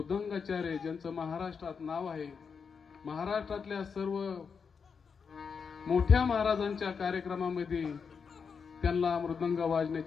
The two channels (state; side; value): quieter; right; 5.9 dB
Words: ज्यांचं महाराष्ट्रात नाव आहे. महाराष्ट्रातल्या सर्व मोठ्या महाराजांच्या कार्यक्रमामध्ये त्यांना मृदंग